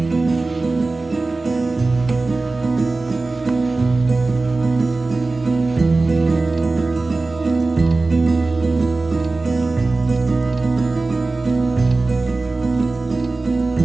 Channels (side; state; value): left; quieter; 3.4 dB